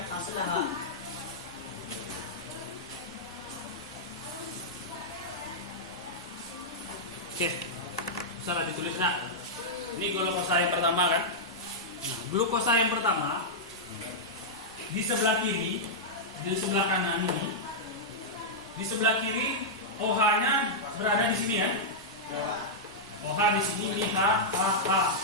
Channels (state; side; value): normal; both; correlation -0.08